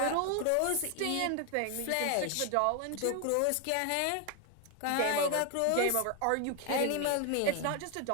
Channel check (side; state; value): both; different; correlation 0.01